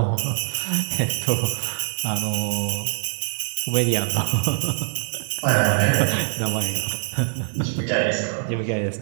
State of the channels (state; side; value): silent; left; 58 dB below the other